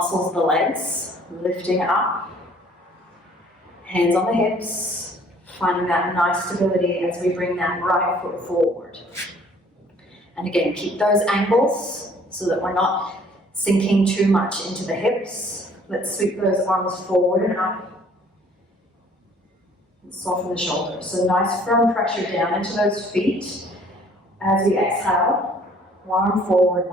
of the legs, lifting up, hands on the hips, finding that nice stability as we bring that right foot forward. And again, keep those ankles so that we're not sinking too much into the hips. Let's sweep those arms forward and up. And soften the shoulders. So nice firm pressure down into those feet. As we exhale, one arm forward,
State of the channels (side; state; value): both; normal; correlation 0.57